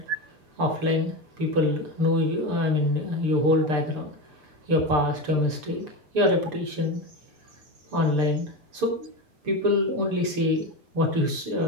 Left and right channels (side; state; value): left; late; 6.8 ms